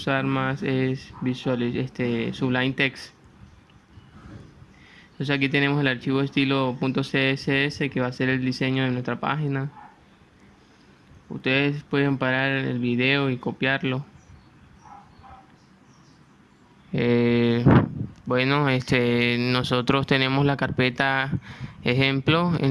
más es Sublime Text. Entonces aquí tenemos el archivo estilo .css que va a ser el diseño de nuestra página. Ustedes pueden parar el video y copiarlo. Eh, bueno, nosotros tenemos la carpeta ejemplo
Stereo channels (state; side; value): identical; both; correlation 1.00